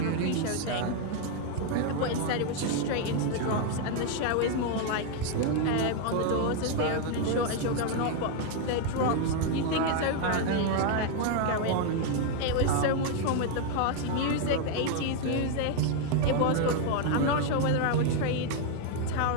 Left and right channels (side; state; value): both; different; correlation 0.01